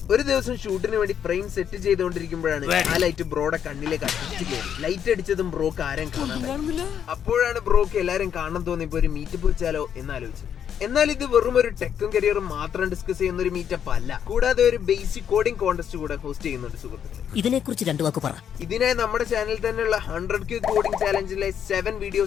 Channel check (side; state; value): right; quieter; 8.7 dB